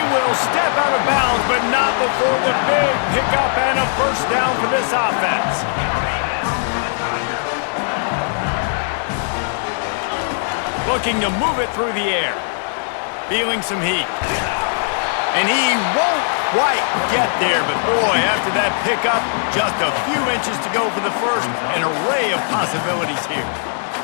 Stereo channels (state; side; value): silent; right; digital silence